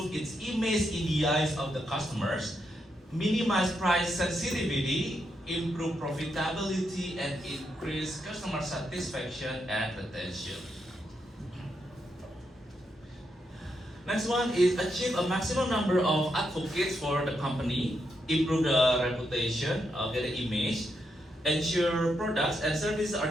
its image in the eyes of the customers, minimize price sensitivity, improve profitability, and increase customer satisfaction and retention. Next one is achieve a maximum number of advocates for the company, improve the reputation, get the image, ensure products and services are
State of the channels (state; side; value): normal; both; correlation 0.81